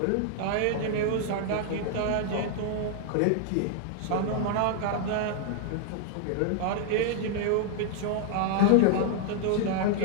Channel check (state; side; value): different; both; correlation -0.01